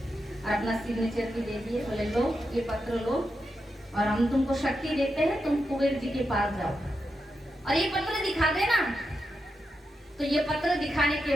और अपना सिग्नेचर भी दे दिए। बोले, लो ये पत्र लो और हम तुमको शक्ति देते हैं, तुम कुबेर जी के पास जाओ और ये पत्र दिखा देना। तो ये पत्र दिखाने के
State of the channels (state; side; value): normal; both; correlation 0.87